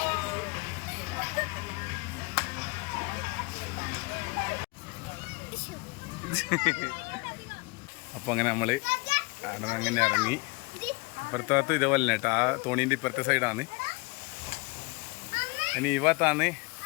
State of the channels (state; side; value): quieter; right; 27.6 dB